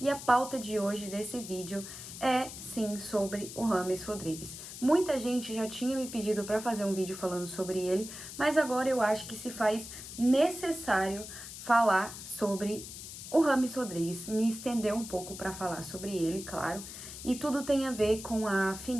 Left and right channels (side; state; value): left; noise; hiss, 11 dB below the sound